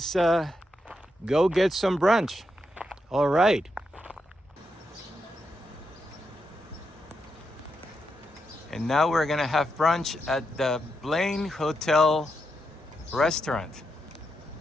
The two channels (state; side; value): normal; both; correlation 0.84